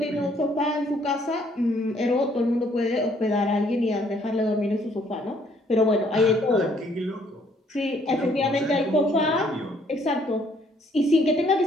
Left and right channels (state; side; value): normal; both; correlation 0.65